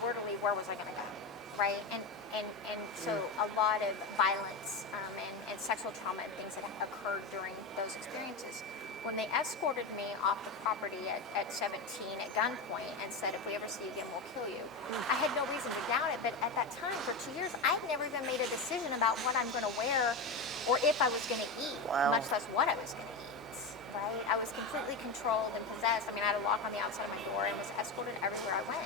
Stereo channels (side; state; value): right; quieter; 3.6 dB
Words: to leave, where was I going to go? Right? And so a lot of violence and sexual trauma and things that occurred during those experiences. When they escorted me off the property at 17 at gunpoint and said, if we ever see you again, we'll kill you, I had no reason to doubt it. But at that time, for 2 years, I had never even made a decision about what I'm going to wear or if I was going to eat, much less what I was going to eat, right? I was completely controlled and possessed. I mean, I had a lock on the outside of my door and was escorted everywhere I